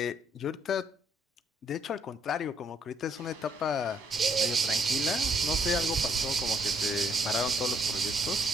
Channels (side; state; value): both; normal; correlation 0.69